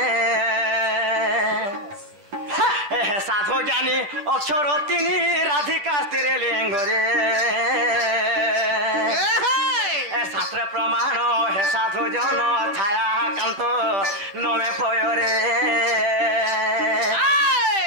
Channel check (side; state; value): left; late; 10 ms